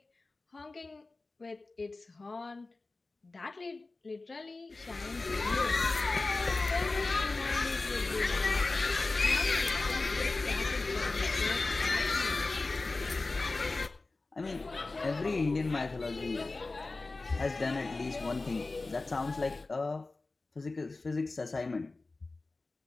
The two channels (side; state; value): right; quieter; 3.4 dB